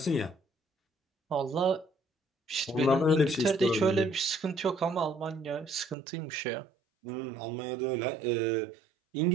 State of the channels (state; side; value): drops out; left; at 6.0 s